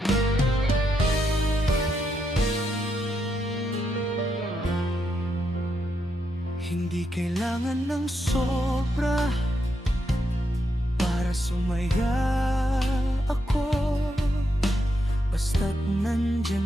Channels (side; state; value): both; normal; correlation 0.81